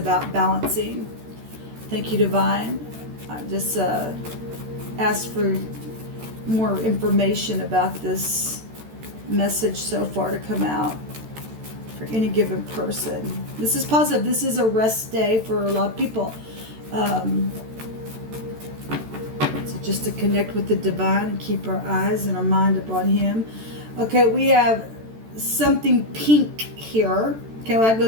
balancing. Thank you, divine. I just asked for more information about this message so far to come out for any given person. This is positive. This is a rest day for a lot of people. So just to connect with the divine and keep our eyes and our mind upon him. Okay, we have something pink here. Okay, well, that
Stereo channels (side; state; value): left; late; 13 ms